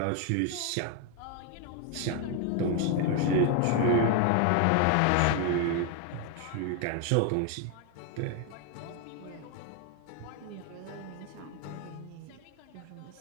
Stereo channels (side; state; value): both; different; correlation 0.01